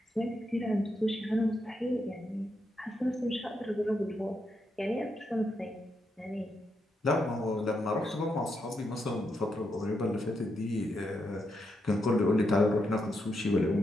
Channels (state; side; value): normal; both; correlation 0.82